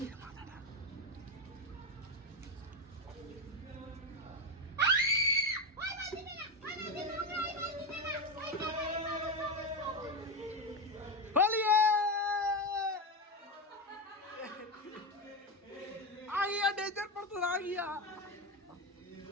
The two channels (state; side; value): normal; both; correlation 0.13